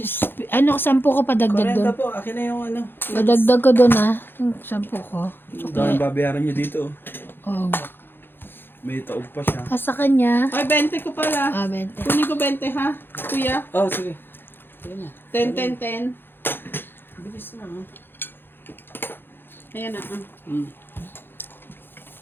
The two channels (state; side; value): late; right; 0.10 ms